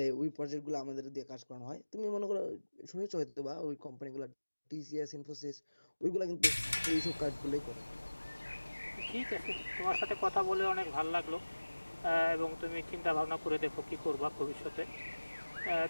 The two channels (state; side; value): inverted; both; correlation -1.00